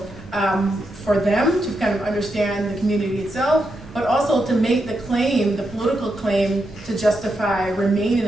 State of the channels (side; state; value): both; normal; correlation 0.84